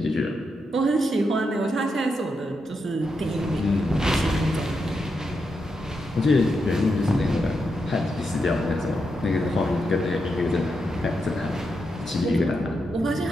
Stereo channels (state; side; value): normal; both; correlation 0.84